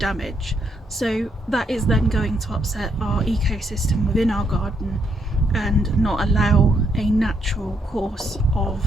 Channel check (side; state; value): both; normal; correlation 0.75